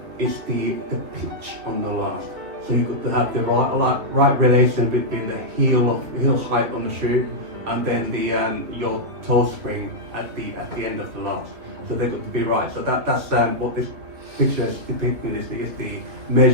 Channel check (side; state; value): left; late; 3.2 ms